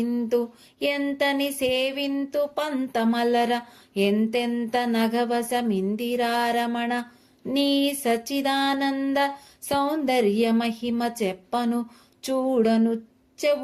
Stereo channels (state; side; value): identical; both; correlation 1.00